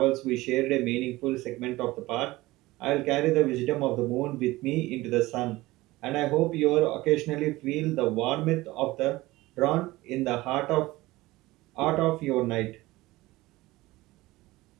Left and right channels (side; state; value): left; quieter; 19.1 dB